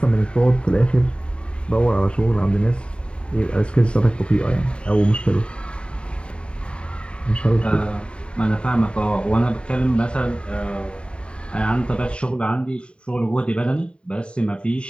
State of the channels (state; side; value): late; right; 0.054 ms